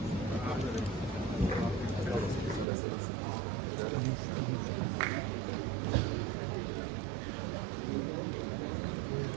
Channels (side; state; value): left; drops out; at 2.7 s